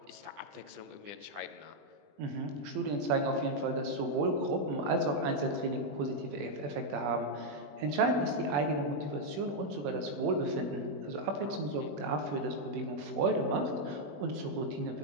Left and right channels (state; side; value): late; left; 21 ms